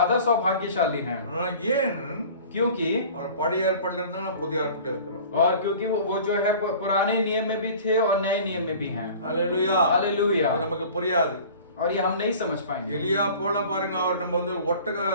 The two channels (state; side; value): inverted; both; correlation -0.44